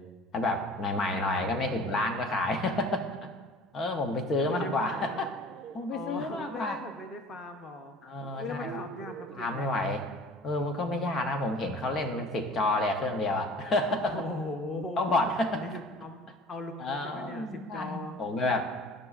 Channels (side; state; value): both; normal; correlation 0.45